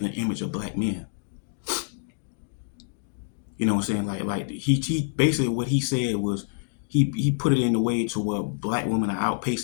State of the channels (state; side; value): silent; right; digital silence